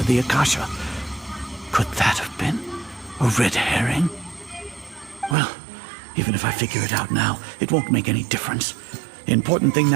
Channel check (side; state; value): left; drops out; at 5.4 s